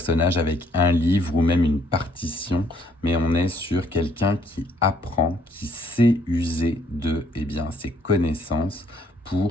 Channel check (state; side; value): normal; both; correlation 0.66